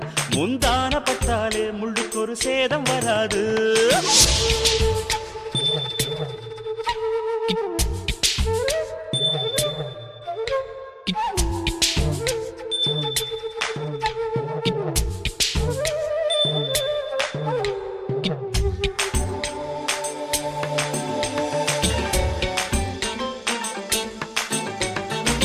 முந்தான பட்டாலே முள்ளுக்கு ஒரு சேதம் வராது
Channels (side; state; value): both; identical; correlation 1.00